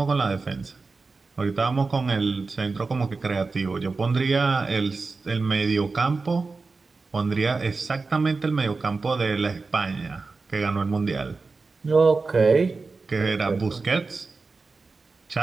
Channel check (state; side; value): quieter; left; 4.1 dB